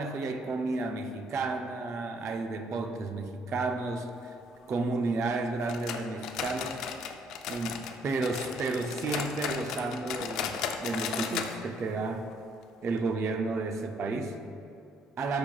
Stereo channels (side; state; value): both; normal; correlation 0.67